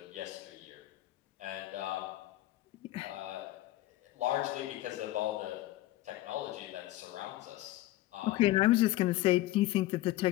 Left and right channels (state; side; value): quieter; right; 16.2 dB